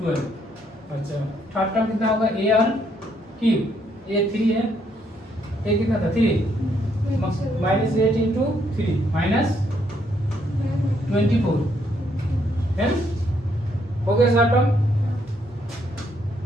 अच्छा थर्ड टर्म कितना होगा ar क्यूब, a 3 है, a कितना था 3, -8 इंटू 3 -24, है ना, हो गया सारा टर्म,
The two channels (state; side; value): normal; both; correlation 0.72